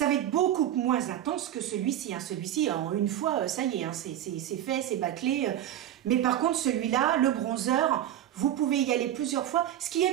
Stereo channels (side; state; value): left; quieter; 11.6 dB